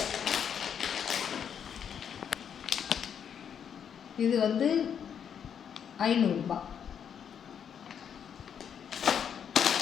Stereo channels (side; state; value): right; quieter; 8.1 dB